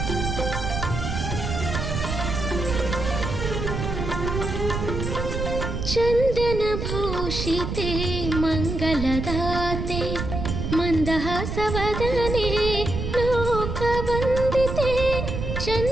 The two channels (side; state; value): right; noise; rumble, 3 dB below the sound